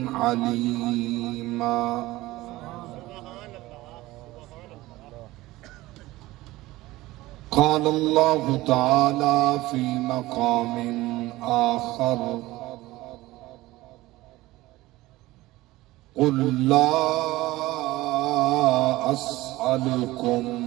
عليما. قال الله تعالى في مقام آخر: قل لا أسألكم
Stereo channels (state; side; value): quieter; left; 18.2 dB